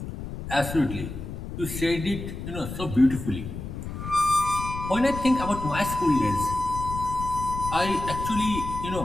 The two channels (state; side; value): noise; left; rumble, 8 dB below the sound